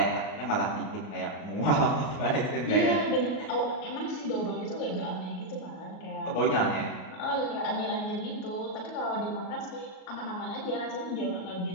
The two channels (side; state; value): right; late; 38 ms